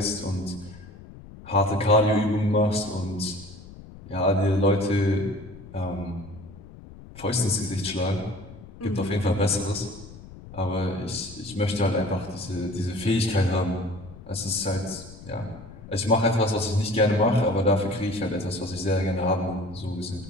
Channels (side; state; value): left; noise; rumble, 17 dB below the sound